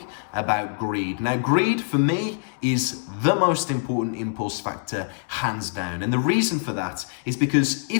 about greed. Now greed for me is the most important impulse factor hands down. And the reason for that is because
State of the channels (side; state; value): right; silent; digital silence